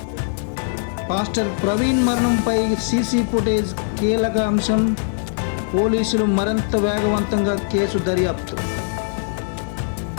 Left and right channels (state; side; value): silent; right; digital silence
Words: Pastor Praveen మరణంపై సీసీ ఫుటేజ్ కీలక అంశం. పోలీసులు మరింత వేగవంతంగా కేసు దర్యాప్తు.